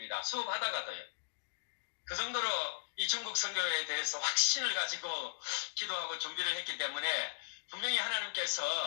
수업하다가도요. 그 정도로 이 중국 선교에 대해서 확신을 가지고 기도하고 준비를 했기 때문에 분명히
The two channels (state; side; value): silent; right; digital silence